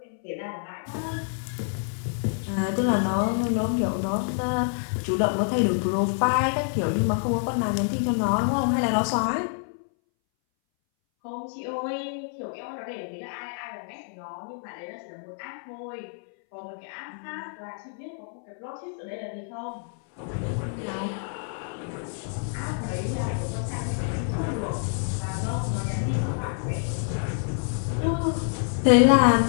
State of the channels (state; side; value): silent; right; 60 dB below the other